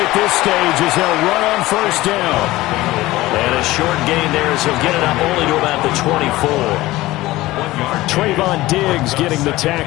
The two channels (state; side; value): quieter; right; 17.9 dB